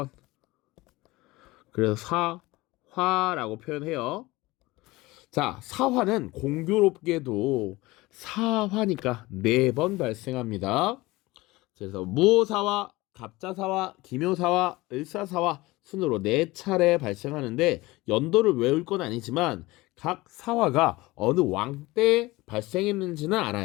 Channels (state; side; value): quieter; right; 20.5 dB